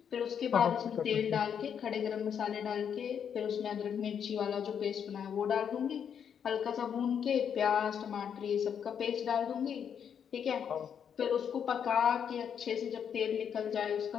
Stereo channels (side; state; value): right; quieter; 8.0 dB